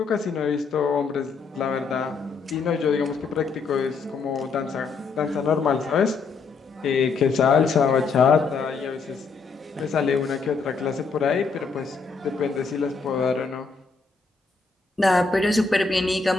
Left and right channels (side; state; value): right; quieter; 4.7 dB